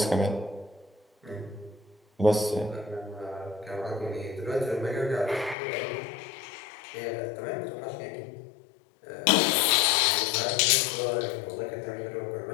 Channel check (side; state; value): right; drops out; at 5.6 s